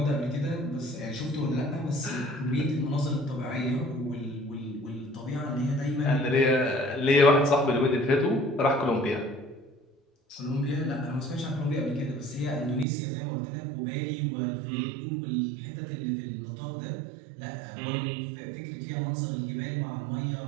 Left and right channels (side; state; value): left; drops out; at 12.9 s